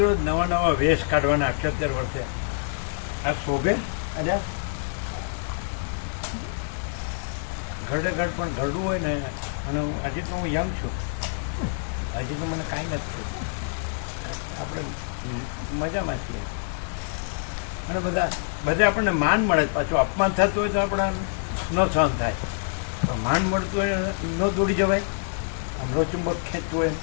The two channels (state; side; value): silent; right; digital silence